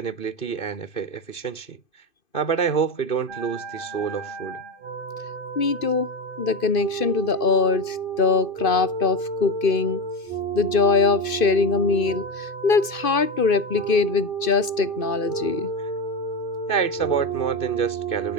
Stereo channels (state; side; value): late; right; 2.5 ms